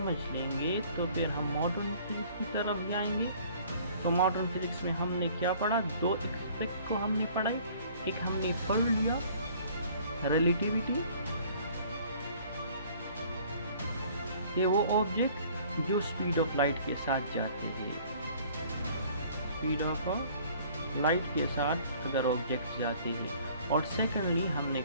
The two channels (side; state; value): both; inverted; correlation -0.54